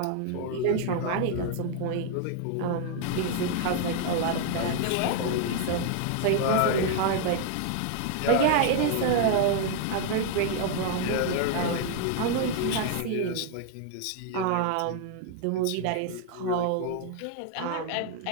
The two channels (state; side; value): different; both; correlation 0.00